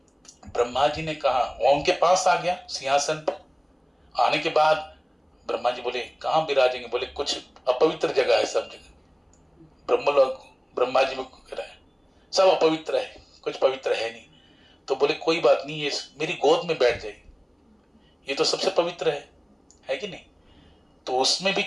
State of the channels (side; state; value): both; identical; correlation 1.00